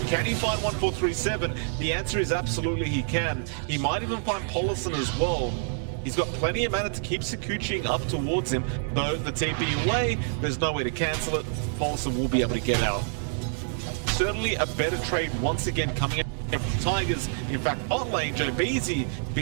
Can he find 1437? The answer is absolutely he can. He might even find Polison as well. He's got plenty of mana to keep Sakuchiing up towards him, though the TP away, there's no way to cancel it. Polison will be able to get out. Certainly a better trade once again coming out from Tigers. In fact, bot lane, Joe Beasy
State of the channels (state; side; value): silent; left; digital silence